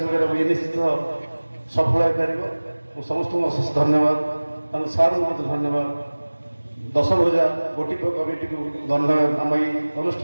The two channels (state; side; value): inverted; both; correlation -1.00